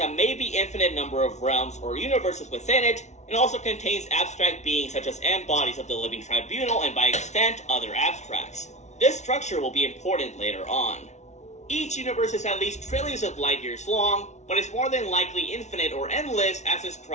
maybe infinite number of realms or universes within it, and also contains abstract beings such as embodies of the living tribunal and by extent other abstracts. This structure will be important later on. Each universe is at least trillions of light years long, but is more than likely infinite or endless as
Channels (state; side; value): late; right; 0.33 ms